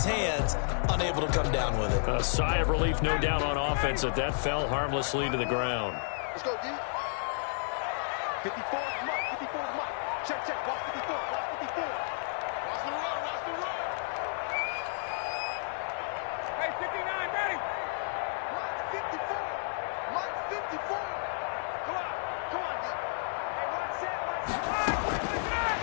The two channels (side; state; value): right; silent; 57 dB below the other